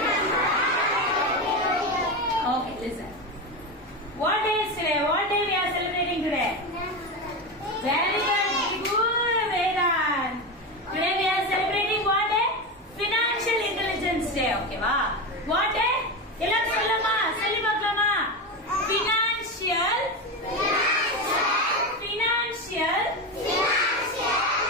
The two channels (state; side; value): normal; both; correlation 0.18